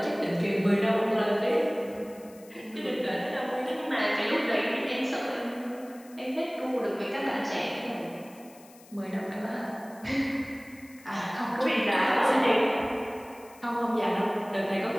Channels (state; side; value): noise; left; hiss, 24 dB below the sound